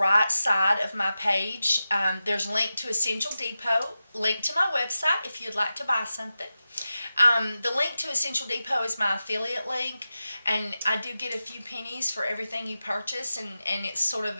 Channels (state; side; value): inverted; both; correlation -0.92